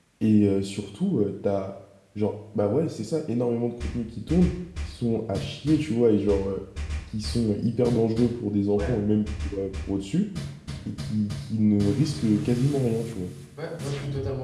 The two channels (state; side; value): identical; both; correlation 1.00